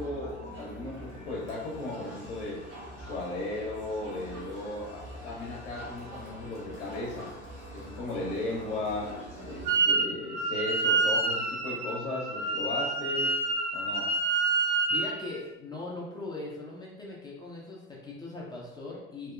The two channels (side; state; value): both; normal; correlation -0.02